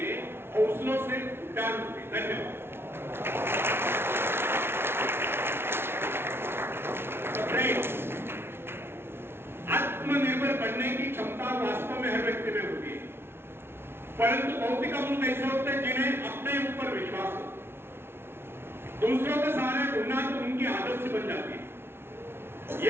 हौसलों से उड़ान होती है। धन्यवाद। आत्मनिर्भर बनने की क्षमता वास्तव में हर व्यक्ति में होती है, परंतु बहुत ही कम लोग ऐसे होते हैं जिन्हें अपने ऊपर विश्वास हो। दूसरों के सहारे ढूंढना तो उनकी आदत से बन जाती है।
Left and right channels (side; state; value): left; late; 0.12 ms